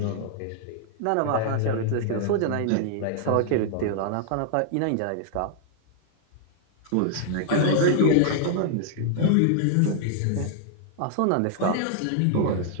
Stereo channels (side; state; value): both; different; correlation -0.01